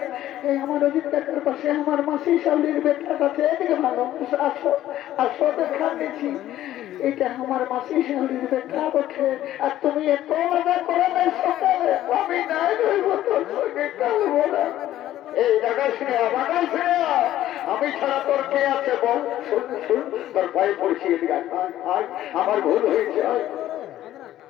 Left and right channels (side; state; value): right; quieter; 13.3 dB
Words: এই আমার অজিত কাকার পাশে আমার মাসি শালির বেটা আছে এদিকে ভালো আসো আসো দেখা নিয়েছি এটা আমার মাসি শালির বেটা বটে আর তুমি এত মজা করে নাই সকালে আমি নাই রইব তোর সঙ্গে কালবো না এই জায়গায় শুনে আমাকে শুনে আমি ছাড়া তোর কে আছে বল শুন শুন তোর পায়ে পড়ছি এদিকে আয় আমার ভুল হয়েছে আয়